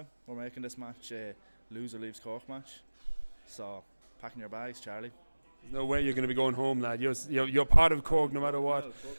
We're making this match a loser leaves Cork match. So, packing your bags, Charlie. There's no way you're going to be going home, lad. You're part of Cork no matter what.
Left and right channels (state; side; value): inverted; both; correlation -1.00